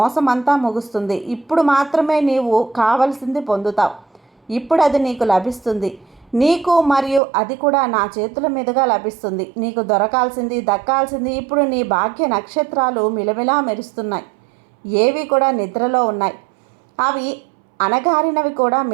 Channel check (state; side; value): drops out; left; at 7.2 s